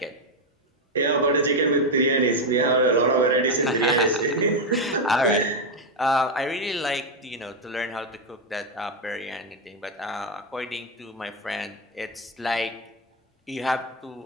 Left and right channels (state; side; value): normal; both; correlation 0.05